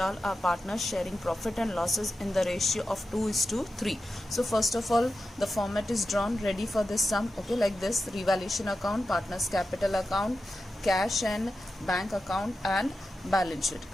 are partners sharing profit and losses in the ratio of 2:3. So first of all, the format is drawn ready for this sum. Okay, like this: revaluation account, partners capital account, cash and bank account, and balance sheet.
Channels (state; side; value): normal; both; correlation 0.91